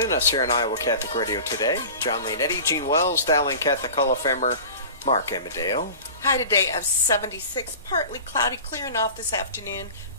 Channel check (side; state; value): both; inverted; correlation -0.37